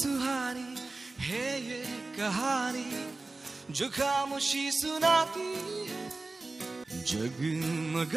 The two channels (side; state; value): left; quieter; 3.4 dB